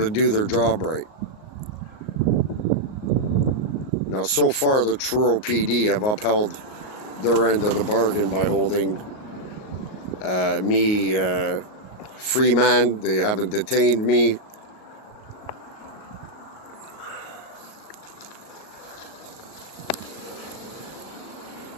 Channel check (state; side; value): late; right; 38 ms